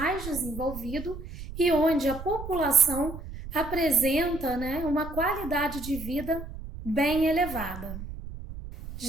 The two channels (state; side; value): noise; right; rumble, 11 dB below the sound